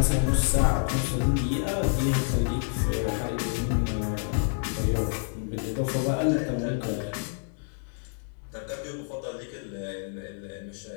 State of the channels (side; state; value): right; silent; 59 dB below the other